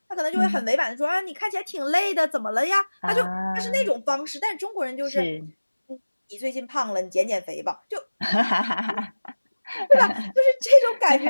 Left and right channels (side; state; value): both; inverted; correlation -1.00